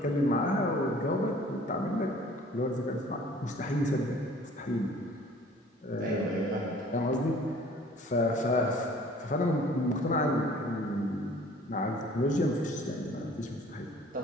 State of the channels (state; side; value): normal; both; correlation 0.51